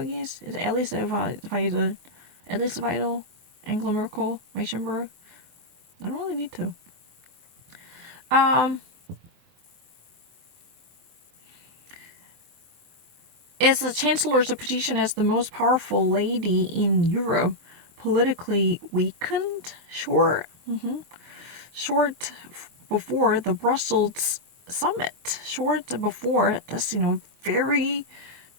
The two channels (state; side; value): late; left; 24 ms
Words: Is Alice Vital, Angela Merkel, Weissenberg? I don't really need to. Is the Chancellor's position as the most powerful lady in Europe politically weakened? Short before the Brussels summit. Short before this, very